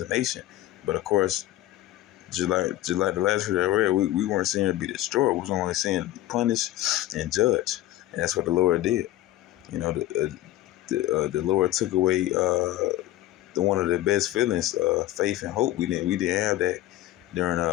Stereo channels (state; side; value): quieter; right; 14.9 dB